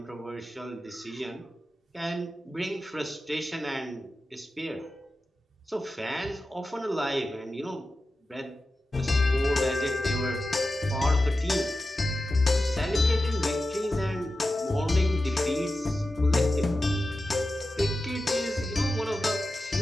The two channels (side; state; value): both; normal; correlation 0.93